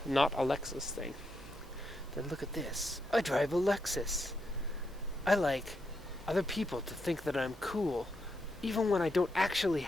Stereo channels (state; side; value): normal; both; correlation 0.82